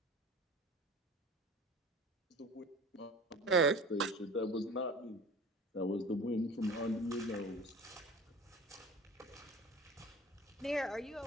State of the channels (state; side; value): normal; both; correlation 0.40